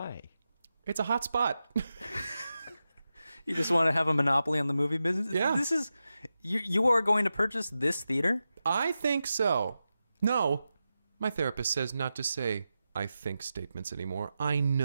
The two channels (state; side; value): inverted; both; correlation -0.91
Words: It's a hot spot. You just want to have a monopoly on the movie business? Yeah. This is... You are going to purchase this theater? I think so. No, my therapist says not to say I think statements anymore. I